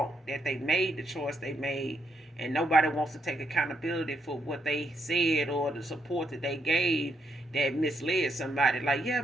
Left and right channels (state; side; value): normal; both; correlation 0.77